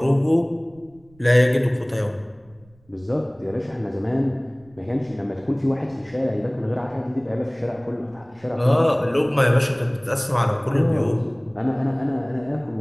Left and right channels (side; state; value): right; noise; rumble, 29 dB below the sound